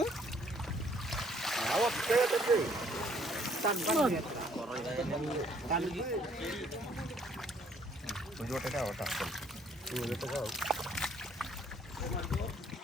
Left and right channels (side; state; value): both; normal; correlation 0.64